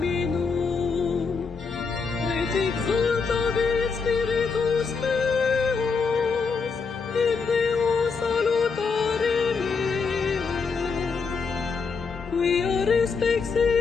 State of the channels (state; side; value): quieter; right; 5.0 dB